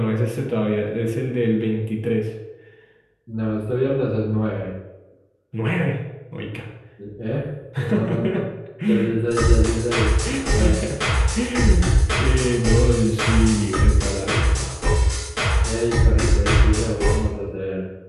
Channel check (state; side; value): identical; both; correlation 1.00